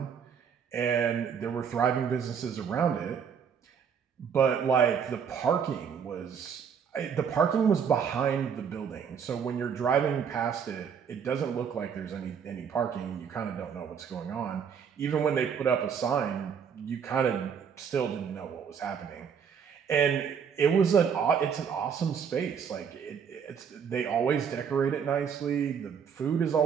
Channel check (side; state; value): left; quieter; 7.2 dB